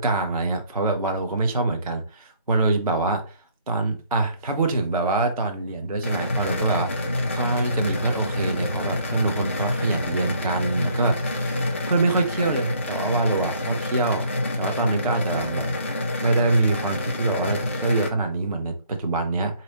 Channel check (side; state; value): both; inverted; correlation -0.62